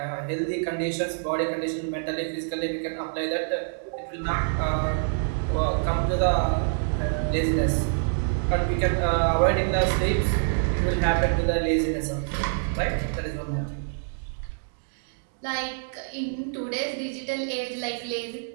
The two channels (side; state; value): left; silent; digital silence